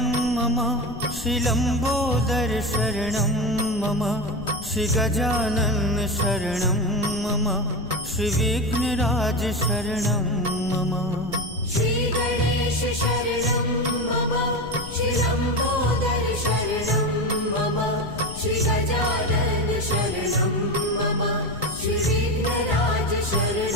मम श्रीलम्बोदर शरणं मम श्रीगजानन शरणं मम श्रीविघ्नराज शरणं मम। श्रीगणेश शरणं मम श्रीलम्बोदर शरणं मम श्रीगजानन शरणं मम श्रीविघ्नराज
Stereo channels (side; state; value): left; noise; rumble, 13 dB below the sound